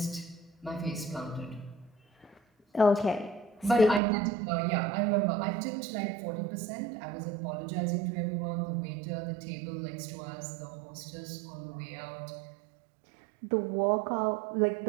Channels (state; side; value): drops out; left; at 4.0 s